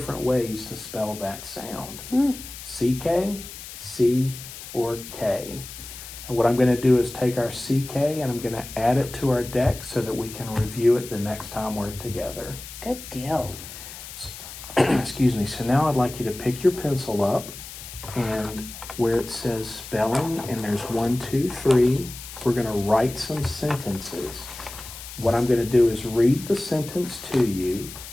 ways to spell that sound. CK, C, or K. And what I'm going to do is take our CK and I'm going to add it to our deck so that we can review it the next time we're together. Good deal. Excuse me. So now I'd like you to pick your pencil up, and where it says spelling and there's 1, 2, 3, we're going to write some sentences. What I'm going to do is read the sentence to you.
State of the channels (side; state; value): left; noise; hiss, 13 dB below the sound